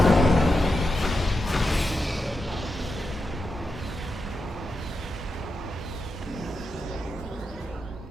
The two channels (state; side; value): normal; both; correlation 0.87